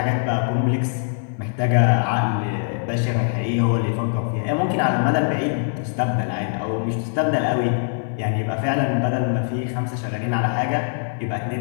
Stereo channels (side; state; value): right; silent; digital silence